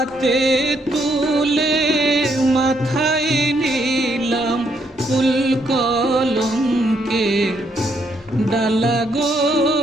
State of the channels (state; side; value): normal; both; correlation 0.74